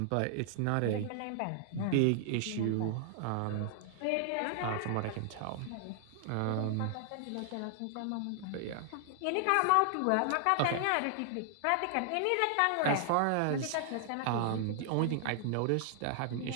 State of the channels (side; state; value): both; different; correlation 0.00